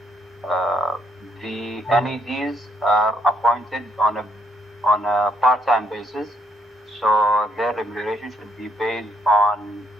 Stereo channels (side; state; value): both; normal; correlation 0.72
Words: the NEDs are appointed on a part-time basis, so their remuneration should be based on